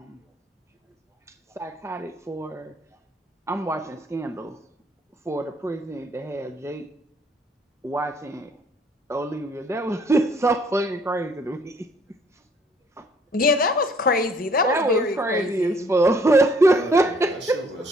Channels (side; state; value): both; normal; correlation 0.62